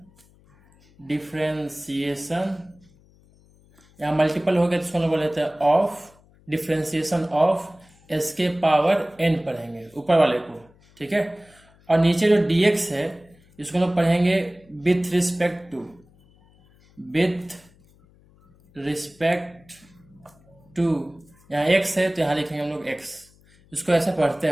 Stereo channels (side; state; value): left; noise; hum, 29 dB below the sound